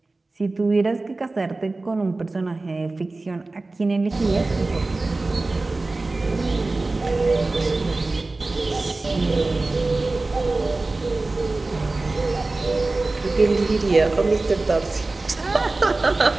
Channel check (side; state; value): left; quieter; 3.2 dB